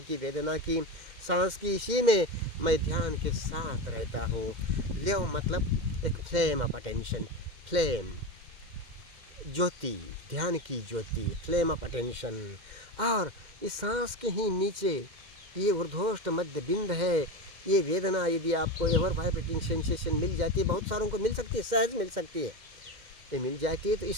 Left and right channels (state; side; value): late; left; 2.1 ms